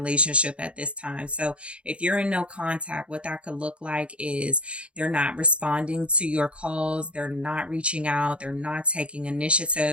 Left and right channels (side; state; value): left; late; 0.059 ms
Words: at this time. So if you're in no contact, what that could look like is they're not responding to your calls. They're not reaching out. They're not taking